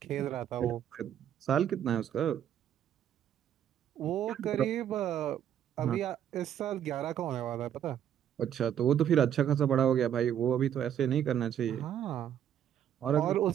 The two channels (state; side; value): quieter; left; 9.9 dB